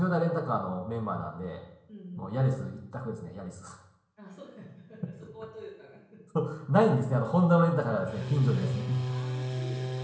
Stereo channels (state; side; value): identical; both; correlation 1.00